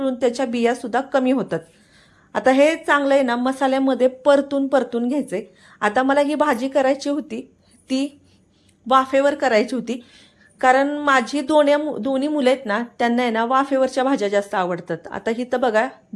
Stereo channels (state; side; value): identical; both; correlation 1.00